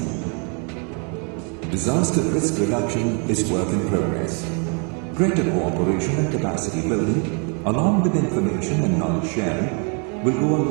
Disaster risk reduction is work in progress. Greater cooperation and capacity building, along with information and knowledge sharing, will go a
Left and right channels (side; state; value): left; quieter; 37.4 dB